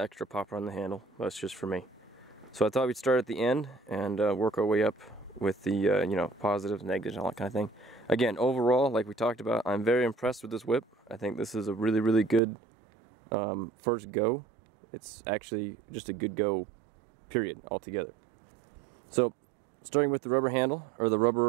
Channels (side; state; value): left; drops out; at 12.4 s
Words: extra popper on the handle, that's just for me. So I thought we'd start at the end and work our way up with the positives, negatives, and all that kind of thing. Again, overall, like we talked about, I'm very impressed with this whip. I think this is a really, really good first go. It's actually just a good go, period, altogether. So, starting with the rubber handle, or the